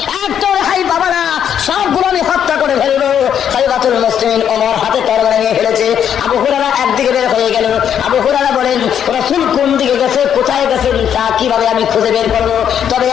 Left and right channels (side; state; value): right; quieter; 9.0 dB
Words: একটা রেহাই পাবো না, সবগুলো আমি হত্যা করে ফেলবো। খলিফাতুল মুসলিমিন ওমর হাতে তরবারি নিয়ে ফেলেছে। আবু হুরায়রা একদিকে বের হয়ে গেল। আবু হুরায়রা বলেন, রাসূল কোন দিকে গেছে, কোথায় গেছেন, তা কিভাবে আমি খুঁজে বের করবো? তবে